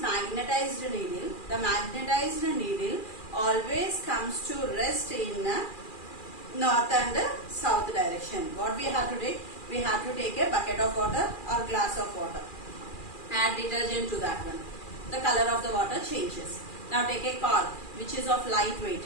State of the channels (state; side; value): late; right; 2.4 ms